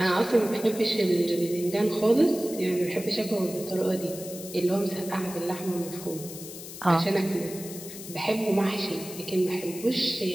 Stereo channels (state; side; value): noise; left; hiss, 12 dB below the sound